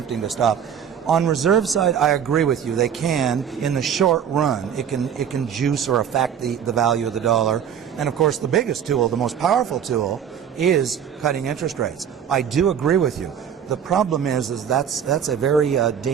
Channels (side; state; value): left; quieter; 8.3 dB